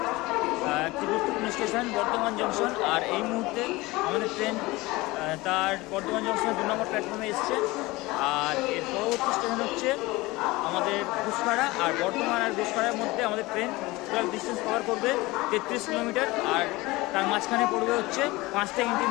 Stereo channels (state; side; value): quieter; right; 21.2 dB